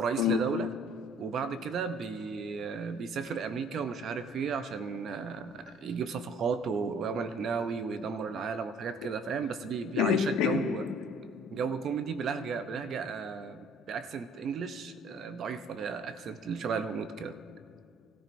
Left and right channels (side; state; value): both; normal; correlation 0.56